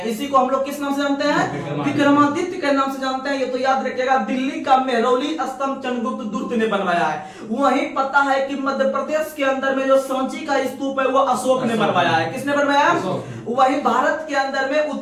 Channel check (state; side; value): identical; both; correlation 1.00